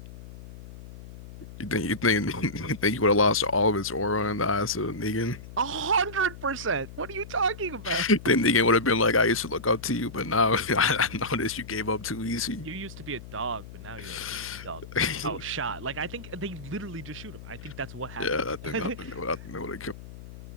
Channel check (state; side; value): noise; left; hum, 15 dB below the sound